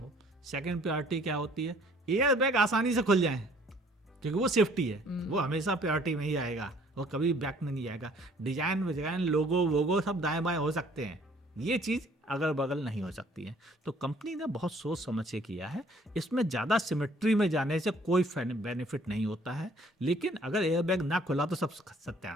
सेकंड प्रायोरिटी क्या होती है? एयर बैग आसानी से खुल जाए, क्योंकि वो सेफ्टी है, वो हमेशा प्रायोरिटी में ही आएगा, वो कभी बैक में नहीं आएगा। डिजाइन विजाइन लोगो वोगो सब दाएं बाएं हो सकते हैं, ये चीज़ अगल बगल नहीं हो सकती है। तो कंपनी ने बहुत सोच समझ के किया है। इसमें ज़्यादा सिमेट्री में जाने से कोई बेनिफिट नहीं होता है, लेकिन अगर एयर बैग ना खुला तो सब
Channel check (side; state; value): both; normal; correlation 0.58